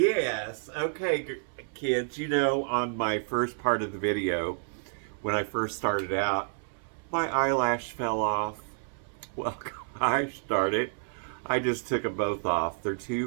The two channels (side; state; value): left; silent; 58 dB below the other